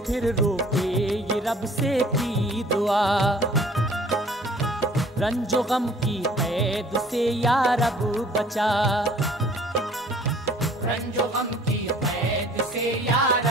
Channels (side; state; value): both; normal; correlation 0.53